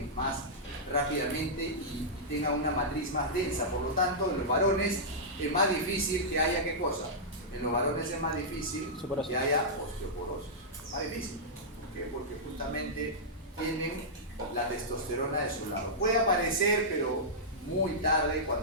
más rápidamente y tengan una matriz más densa. Por lo tanto, en los varones es más difícil que haya, ¿qué cosa? En los varones es más difícil que haya osteoporosis. Más difícil. ¿Por qué? Porque justamente tienen la testosterona de su lado. Puede aparecer, pero muy tarde,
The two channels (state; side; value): normal; both; correlation -0.12